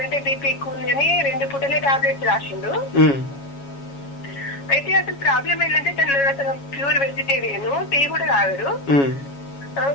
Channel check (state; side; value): late; right; 7.2 ms